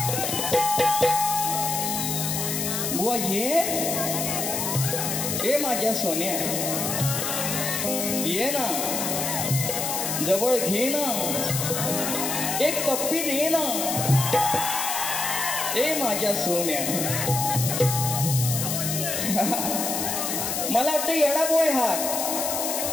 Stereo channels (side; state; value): left; noise; hiss, 1 dB below the sound